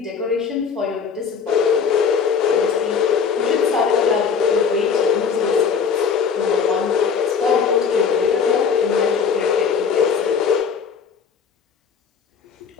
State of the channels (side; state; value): right; quieter; 6.3 dB